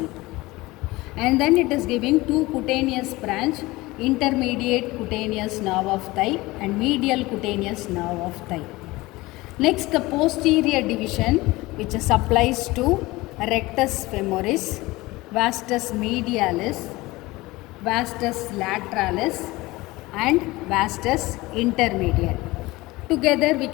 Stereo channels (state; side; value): quieter; right; 20.5 dB